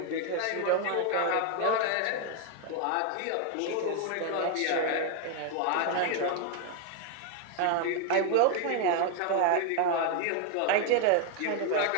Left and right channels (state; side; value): different; both; correlation 0.00